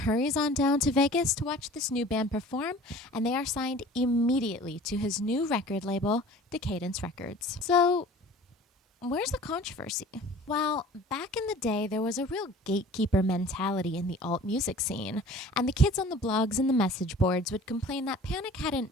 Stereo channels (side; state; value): both; normal; correlation 0.45